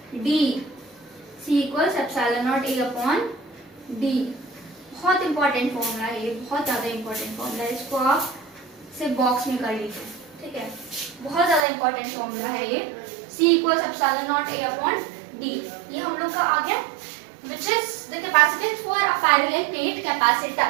D, C equals epsilon not A upon D। बहुत इंपॉर्टेंट फॉर्मूला है ये, बहुत ज़्यादा इंपॉर्टेंट फॉर्मूला है, इसको आप सिर्फ बॉक्स में कर लीजिए, ठीक है। बहुत ज़्यादा इंपॉर्टेंट फॉर्मूला है ये, C equals epsilon not A upon D। ये हम लोग का आ गया, which is the capacitance for a parallel plate capacitor।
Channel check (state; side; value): drops out; left; at 11.6 s